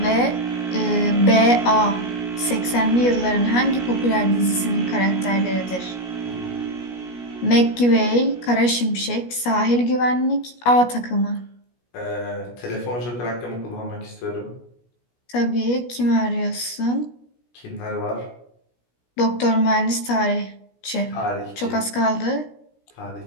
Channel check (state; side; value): late; right; 17 ms